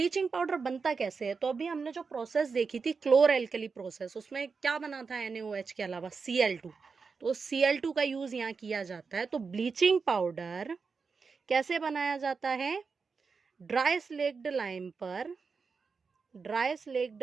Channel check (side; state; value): left; quieter; 5.0 dB